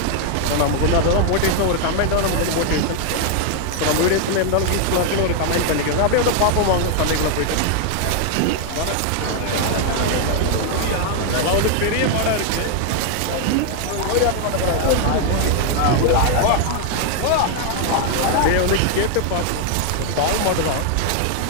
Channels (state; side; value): different; both; correlation 0.00